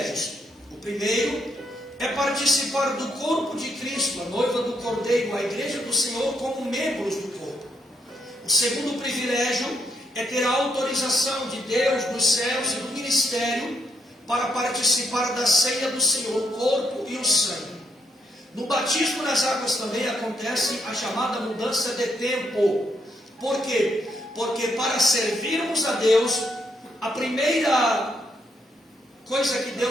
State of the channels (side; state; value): both; normal; correlation 0.75